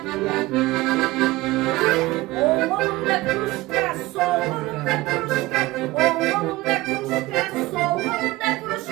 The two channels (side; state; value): left; quieter; 19.5 dB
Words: Oğlumda kruşka, solumda kruşka, oğlumda kruşka, solumda